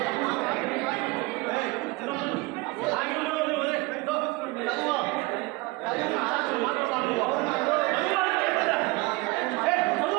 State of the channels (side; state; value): left; quieter; 23.5 dB